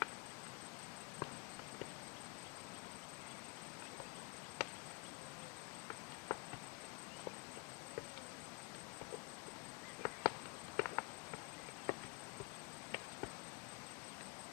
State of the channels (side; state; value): right; quieter; 29.0 dB